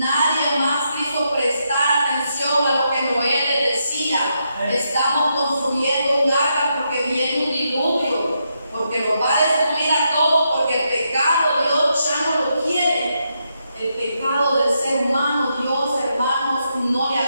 más quiso prestar atención a lo que Noé le decía. Estamos construyendo un arca porque viene un diluvio, porque nos va a destruir a todos, porque el pecado Dios ya no lo quiere. El pecado del ser humano, Dios, hermanos, no le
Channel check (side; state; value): both; inverted; correlation -0.81